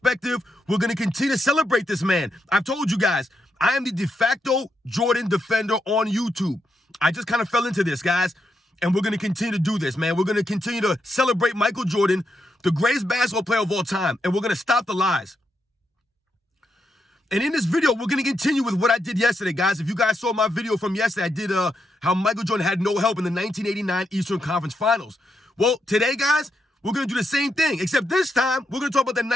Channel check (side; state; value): both; normal; correlation 0.82